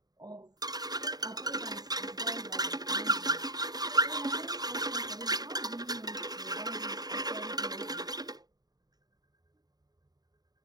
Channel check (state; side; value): late; left; 0.19 ms